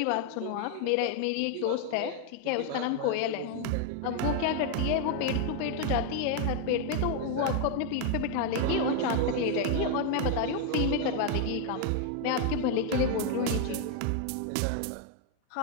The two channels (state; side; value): different; both; correlation 0.00